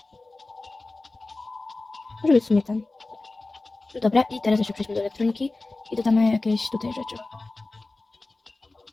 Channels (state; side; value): quieter; right; 3.2 dB